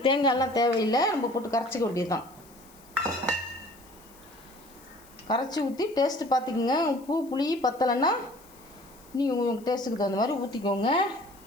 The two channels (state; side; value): noise; left; hiss, 25 dB below the sound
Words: தேங்காயெல்லாம் தேவையில்லை, நம்ம போட்டு கரைச்சிக்க வேண்டியது தான். கரைச்சி ஊற்றி டேஸ்ட்டு பார்த்துக்குங்க. உப்பு புளி பத்தலைன்னா நீங்கள் உங்கள் டேஸ்ட்டுக்கு தகுந்த மாதிரி ஊற்றிக்கோங்க.